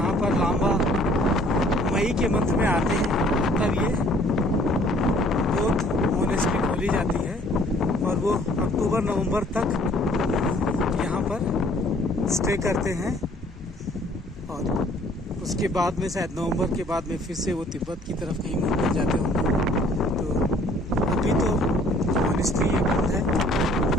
पर लांबा मई के मंथ में आते हैं तब ये बौद्ध मोनेस्ट्री खोली जाती है और वो अक्टूबर नवंबर तक यहाँ पर स्टे करते हैं। और उसके बाद में शायद नवंबर के बाद में फिर से वो तिब्बत की तरफ कहीं मूव कर जाते होंगे। तो अभी तो मोनेस्ट्री ये बंद है।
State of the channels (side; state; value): both; normal; correlation 0.58